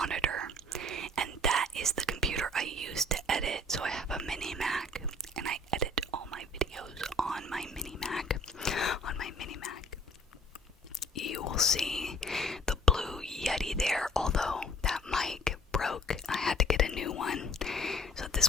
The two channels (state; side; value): normal; both; correlation 0.53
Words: and that is the computer I use to edit. So I have a mini Mac, and I edit all my videos on my mini Mac. You will see the blue Yeti there, although that mic broke. I had to get a new one. So